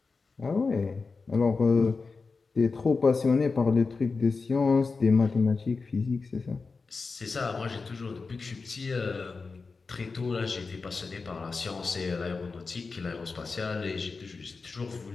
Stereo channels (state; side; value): quieter; right; 4.4 dB